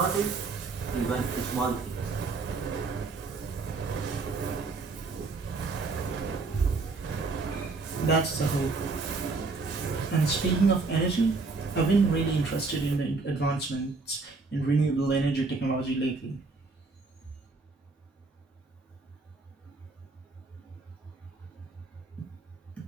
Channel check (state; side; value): quieter; left; 3.9 dB